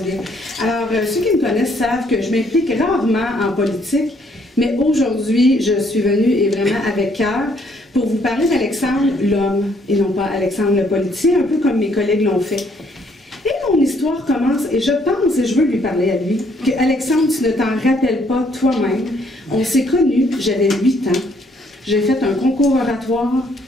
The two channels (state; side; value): normal; both; correlation 0.67